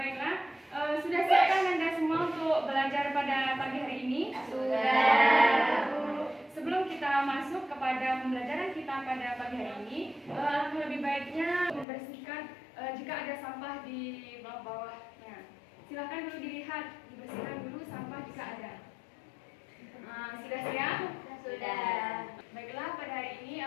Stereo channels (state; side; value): drops out; right; at 11.9 s